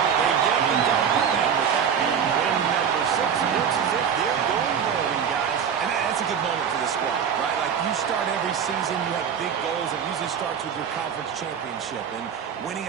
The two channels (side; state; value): left; quieter; 7.6 dB